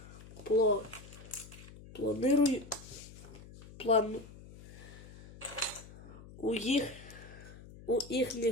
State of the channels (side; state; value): left; noise; hum, 17 dB below the sound